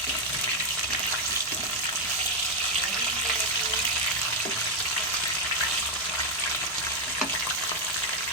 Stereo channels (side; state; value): both; normal; correlation 0.03